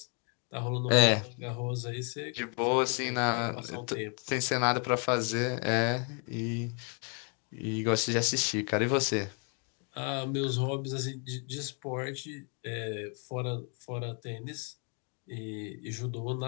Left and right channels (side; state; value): right; quieter; 38.6 dB